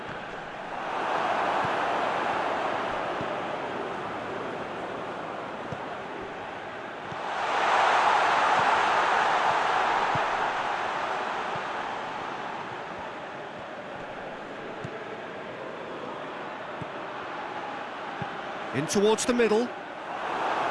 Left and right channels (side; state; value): both; identical; correlation 1.00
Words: In towards the middle.